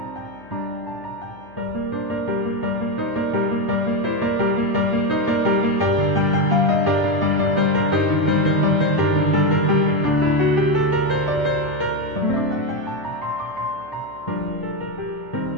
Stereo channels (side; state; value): left; noise; hum, 27 dB below the sound